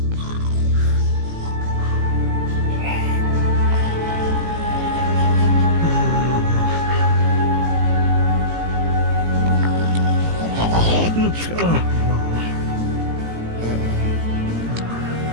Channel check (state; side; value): late; left; 18 ms